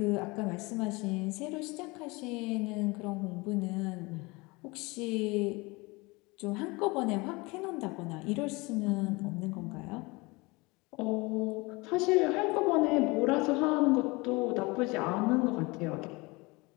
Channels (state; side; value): quieter; right; 25.0 dB